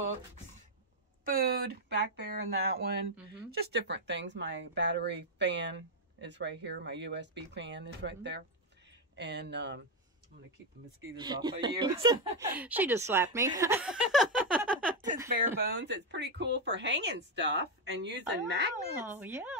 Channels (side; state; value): both; normal; correlation 0.04